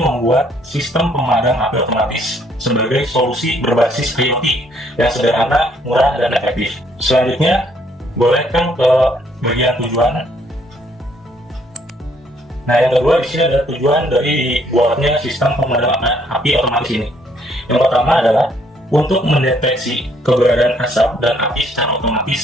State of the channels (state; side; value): normal; both; correlation 0.67